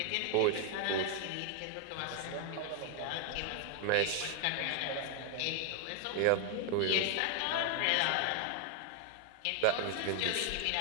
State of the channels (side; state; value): both; different; correlation 0.00